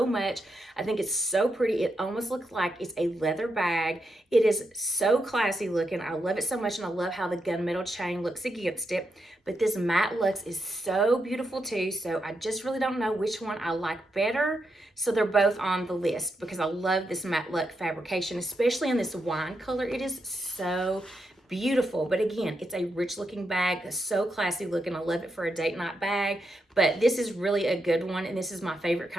much. I think it's so pretty. It almost looks like it's a leather bag. It is so classy looking. I love it so much, and I love how the gunmetal chain looks against it. But this matte luxe is so beautiful too, so I just really don't know which one I like better. So they're both on the list because I love this matte luxe fabrication, especially in this wine color. It is so beautiful. But again, it's a rich looking bag, so classy looking. I love it for a date night bag, but this is really a good one, and this is my favorite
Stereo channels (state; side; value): normal; both; correlation 0.84